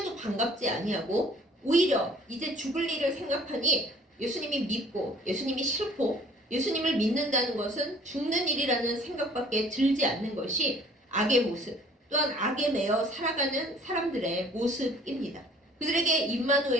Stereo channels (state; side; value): normal; both; correlation 0.53